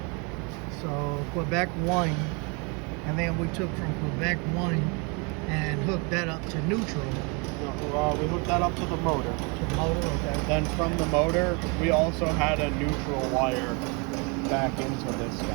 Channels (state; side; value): quieter; left; 32.0 dB